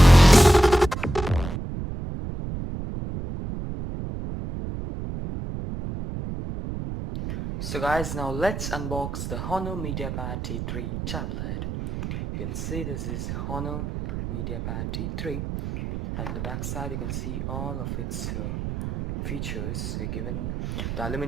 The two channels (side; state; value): right; noise; rumble, 5 dB below the sound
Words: So guys, now let's unbox the Honor MediaPad T3 Tablet. You can see this is Honor MediaPad T3, and the back side you can see all of its features. We're given the